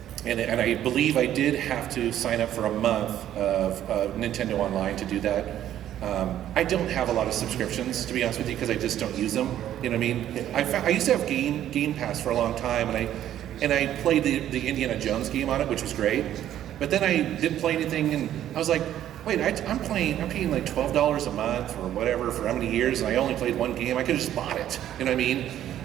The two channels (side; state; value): left; quieter; 11.6 dB